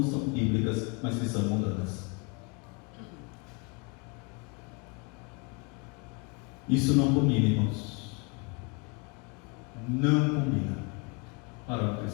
são bíblicas, mas que são mundanas. Isso não combina, irmãos. Não combina para um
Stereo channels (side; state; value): right; quieter; 31.3 dB